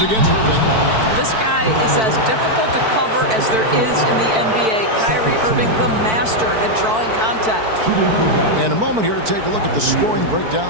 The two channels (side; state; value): left; late; 4.5 ms